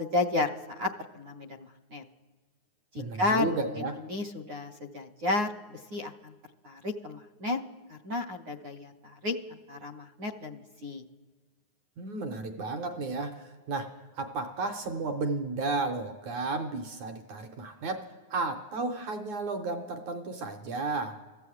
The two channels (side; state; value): left; late; 9.6 ms